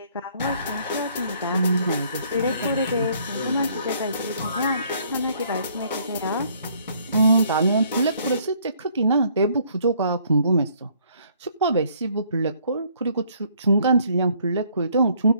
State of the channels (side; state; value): both; inverted; correlation -0.63